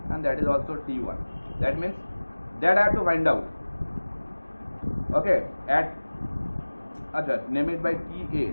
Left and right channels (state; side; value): inverted; both; correlation -1.00